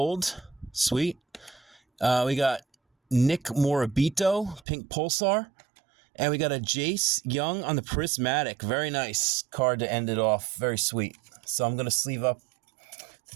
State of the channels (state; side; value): drops out; left; at 4.6 s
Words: Sweet. We got Nick Morabito pink Pulsar. And we got a Jace Young on the Prismatic. Very nice card to end it off. Very sweet. So I'm going to sleeve up